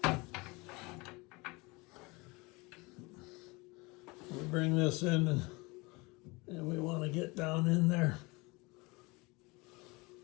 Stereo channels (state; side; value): quieter; right; 25.5 dB